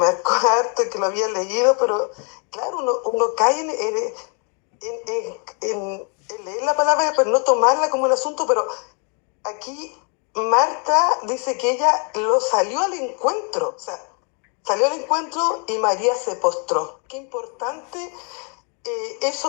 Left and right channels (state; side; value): quieter; right; 38.4 dB